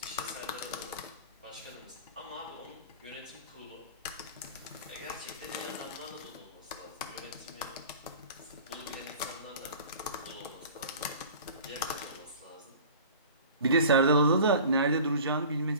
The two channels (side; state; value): both; inverted; correlation -0.41